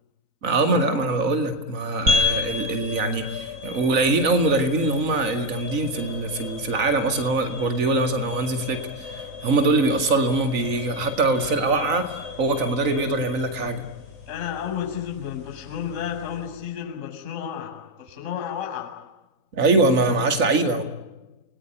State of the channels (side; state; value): left; late; 3.9 ms